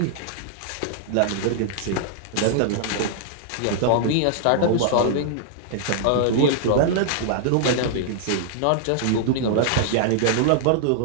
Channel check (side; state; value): both; different; correlation -0.01